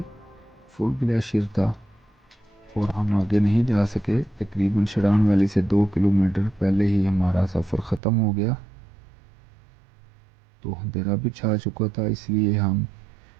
फुल ग्लेशियर था और हम आगे नहीं जा सके। तकरीबन शरान वैली से 2 किलोमीटर पहले ही हमारा सफ़र ख़त्म हो गया, तो अंधेरा भी छा चुका था, इसलिए हम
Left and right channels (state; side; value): drops out; left; at 8.0 s